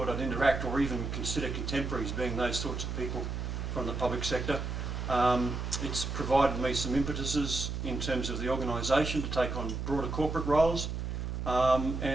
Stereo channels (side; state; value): right; noise; hum, 4 dB below the sound